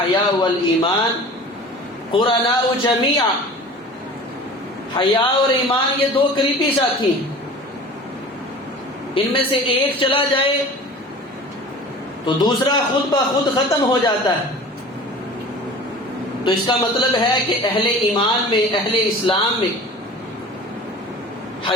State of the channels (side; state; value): both; normal; correlation 0.41